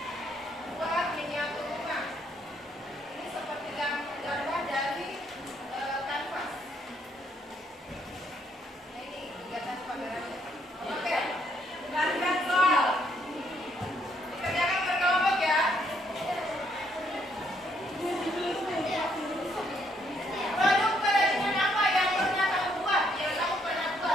buat miniatur rumah. Ini seperti gambar dari kanvas. Nah, ini kegiatan pamerannya. Oke, gantian soal. Dikerjakan berkelompok ya. Produk kerajinan apa yang pernah kamu buat? Yang kamu pernah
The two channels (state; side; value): normal; both; correlation 0.71